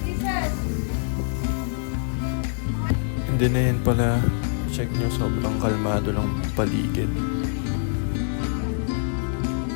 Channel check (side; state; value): right; silent; digital silence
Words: And then ayan pala, check nyo, sobrang kalmado lang paligid.